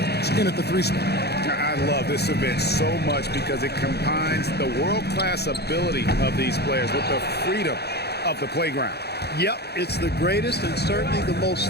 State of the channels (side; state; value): right; late; 0.48 ms